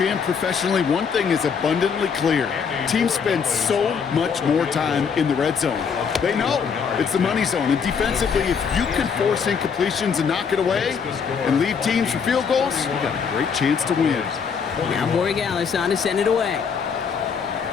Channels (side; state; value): right; quieter; 6.3 dB